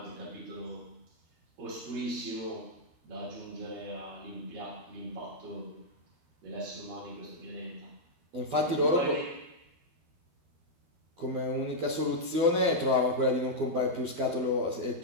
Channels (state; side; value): late; left; 13 ms